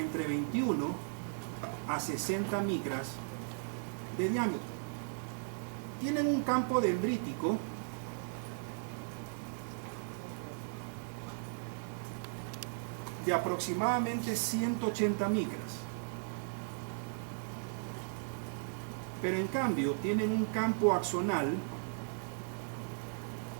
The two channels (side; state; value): left; silent; 53 dB below the other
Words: entre 21 a 60 micras de diámetro. Tienen un campo dendrítico de aproximadamente 180 micras. Pero en cambio tienen un campo axonal